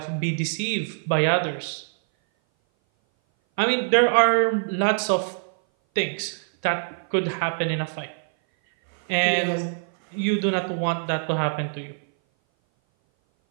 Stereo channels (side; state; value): left; silent; 58 dB below the other